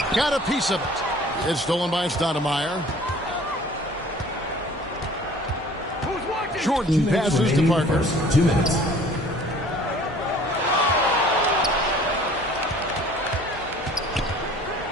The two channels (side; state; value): both; normal; correlation 0.50